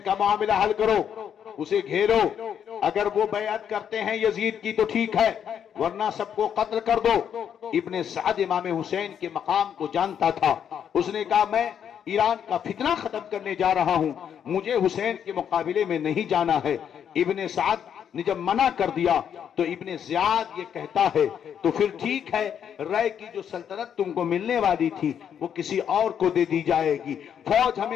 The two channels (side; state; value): right; quieter; 8.6 dB